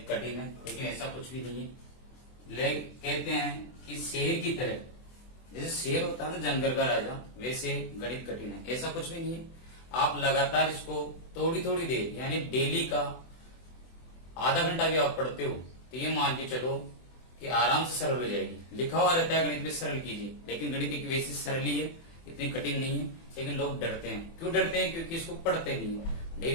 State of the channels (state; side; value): late; right; 24 ms